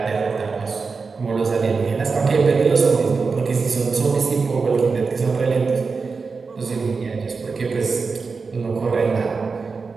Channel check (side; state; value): left; quieter; 4.7 dB